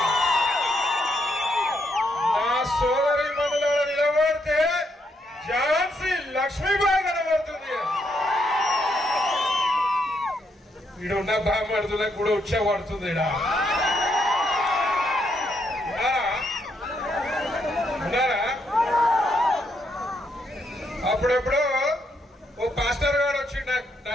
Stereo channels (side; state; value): both; normal; correlation 0.76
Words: నా సోదరి మనులలో నిలబడితే ఝాన్సీ లక్ష్మీబాయి కనబడుతుంది. ఈడున్న బామ్మడుతులకు కూడా ఉచ్చబడుతుంది. ఉన్నారా? అప్పుడెప్పుడు ఓ పాస్టర్ గారు వచ్చి నా